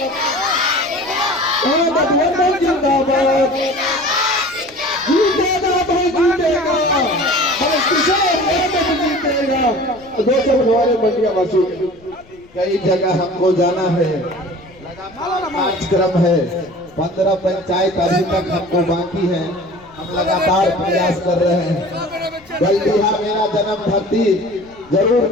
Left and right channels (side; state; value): left; noise; rumble, 27 dB below the sound